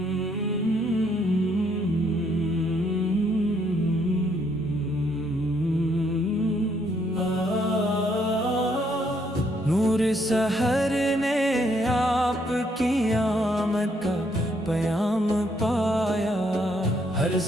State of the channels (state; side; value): normal; both; correlation 0.71